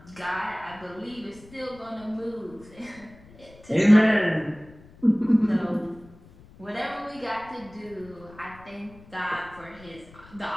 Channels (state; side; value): noise; left; rumble, 22 dB below the sound